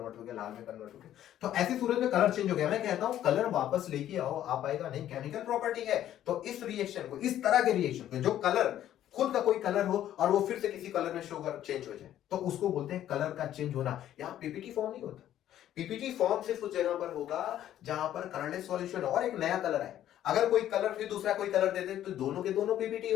हो गया, लाल में कन्वर्ट हो गया। तो ऐसी सूरत में कलर चेंज हो गया। मैं कहता हूं कलर वापस लेके आओ, आप आएगा नहीं, केमिकल प्रॉपर्टी है। तो इस रिएक्शन को, इस तरह के रिएक्शन को, जो कलर खुद का कोई कलर हो और वो फिर से किसी कलर में शो कर चेंज हो जाए, तो उसको बोलते हैं कलर का चेंज होना। यहाँ पीपीटी फॉर्म नहीं होता। पीपीटी फॉर्म सिर्फ उस जगह पर होगा जहां पर कलरलेस सॉल्यूशन और एक नया कलर है। अगर कोई कलर फिर दूसरा कोई कलर दे दे तो दोनों के दोनों पीपीटी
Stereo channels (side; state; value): right; quieter; 11.8 dB